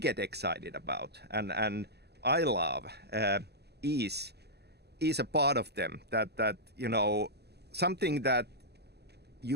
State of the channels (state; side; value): late; left; 0.48 ms